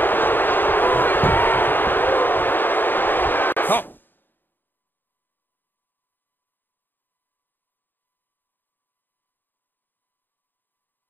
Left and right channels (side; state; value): right; late; 0.093 ms